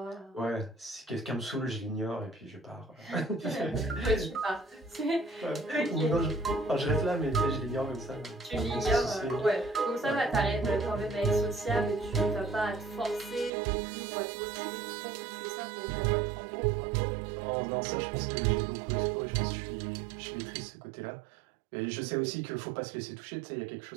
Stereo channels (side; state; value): left; drops out; at 13.5 s